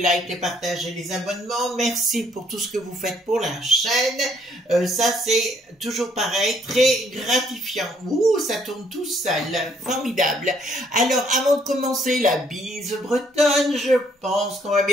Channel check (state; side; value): normal; both; correlation 0.66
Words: les partages et les abonnements. Merci pour tout ce que vous faites pour la chaîne. Ça c'est toujours pareil, très gratifiant. Ouh, ça tourne tout seul, formidable. Alors avant de commencer la bise bretonne, je pense qu'on va